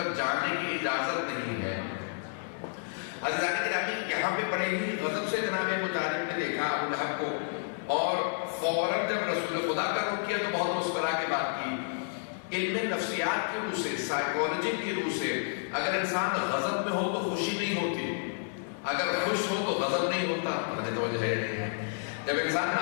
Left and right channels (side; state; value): right; silent; 57 dB below the other